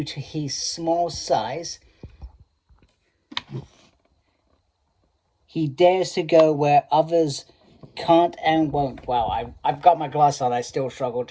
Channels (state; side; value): identical; both; correlation 1.00